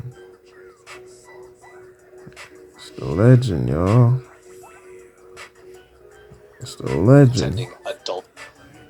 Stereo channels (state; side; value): identical; both; correlation 1.00